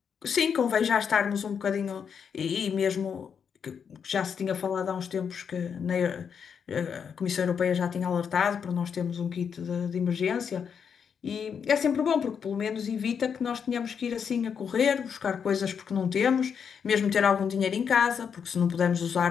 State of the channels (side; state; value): right; quieter; 7.0 dB